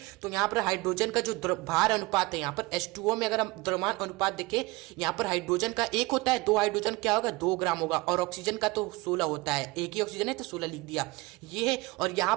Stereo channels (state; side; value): quieter; left; 22.8 dB